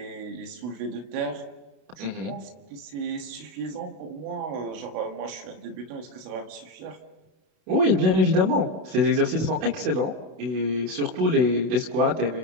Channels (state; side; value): late; left; 32 ms